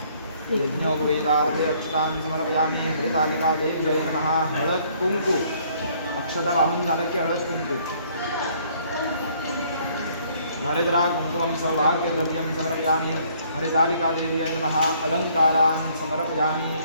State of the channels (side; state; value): both; inverted; correlation -0.62